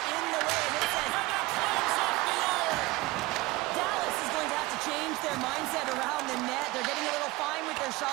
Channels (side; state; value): left; quieter; 20.9 dB